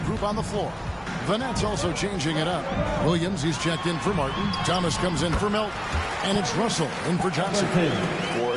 group on the floor. The Nets also changing it up. Williams, he's checked in for Martin. Thomas comes in for Melton. And it's Russell in for Johnson. For a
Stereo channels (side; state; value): both; identical; correlation 1.00